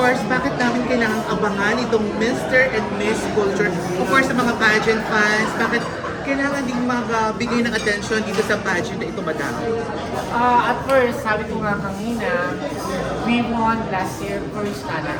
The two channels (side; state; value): both; identical; correlation 1.00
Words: bakit namin kailangan abangan itong Mr. and Miss Culture? Of course, sa mga pageant fans, bakit kailangan ding magbigay ng attention dito sa pageant na ito, madam? At first, sabi ko nga kanina, we won last year first